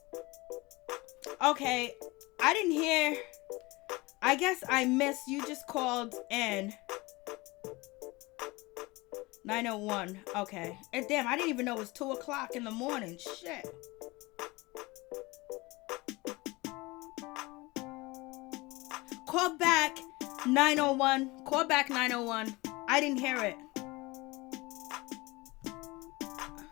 Okay, I didn't hear. I guess I missed. You just called in. 901. Okay. And damn, I didn't even know it was 2 o'clock in the morning. Shit. Call back 901. Call back 901. I didn't hear it.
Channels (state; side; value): quieter; right; 22.9 dB